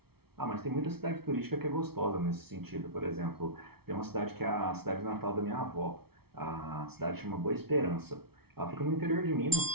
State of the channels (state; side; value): late; left; 0.95 ms